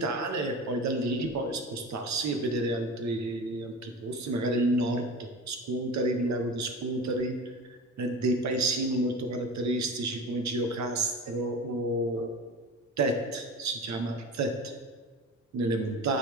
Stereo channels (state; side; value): normal; both; correlation 0.32